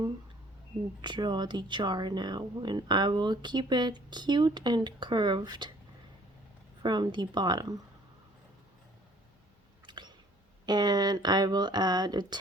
draw the jar now, and I will keep it cute and curved from the bottom. And then I will add a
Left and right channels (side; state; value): both; normal; correlation 0.56